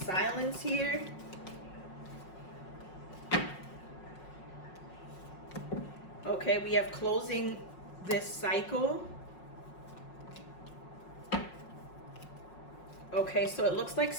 here. Okay, we have closing this cycle. Okay, so it looks like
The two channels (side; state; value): right; late; 5.5 ms